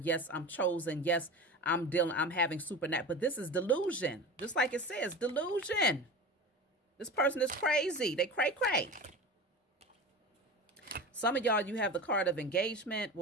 Yes, I'm chosen. Yes, I'm having supernatural. But this is delusion. Just like it says, delusion. This person is crazy. They cray. Some of y'all, you have the card of engagement,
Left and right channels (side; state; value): both; normal; correlation 0.31